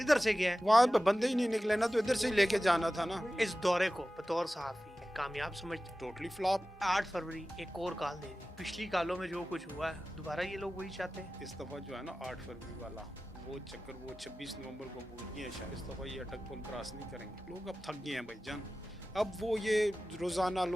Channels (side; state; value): both; normal; correlation 0.95